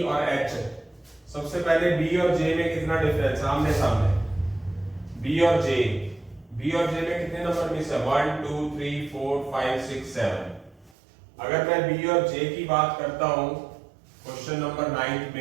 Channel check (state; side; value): drops out; left; at 11.0 s